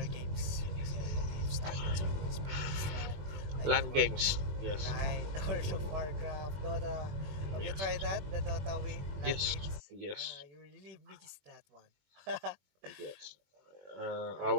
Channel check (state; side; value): late; left; 21 ms